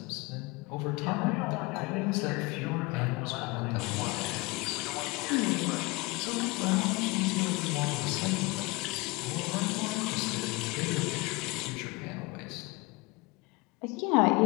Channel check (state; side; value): quieter; right; 25.0 dB